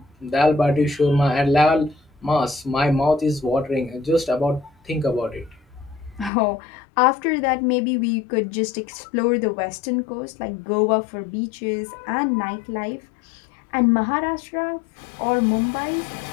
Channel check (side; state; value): right; drops out; at 6.3 s